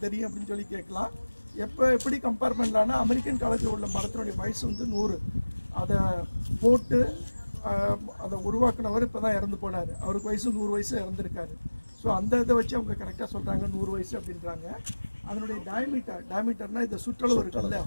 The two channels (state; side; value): inverted; both; correlation -1.00